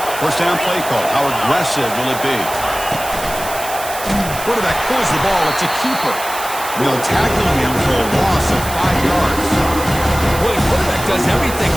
First down play call. How aggressive will it be? Quarterback pulls the ball. It's a keeper. They'll tackle him for a loss of 5 yards. Well, the quarterback does everything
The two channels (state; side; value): noise; right; hiss, 10 dB below the sound